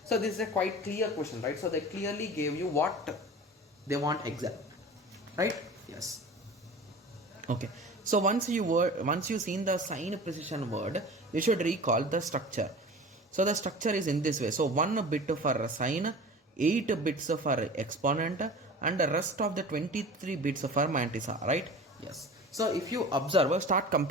so this is a quite clear question, right? So they clearly gave you what they want exact, right? Yes. Okay, so once you seen the sign precision word, you should recall the structure. So the structure is in this way. So 1 bit for sign, 8 bits for exponent, and the rest of the 23 bits for mantissa, right? Yes. So if you observe, start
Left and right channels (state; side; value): normal; both; correlation 0.38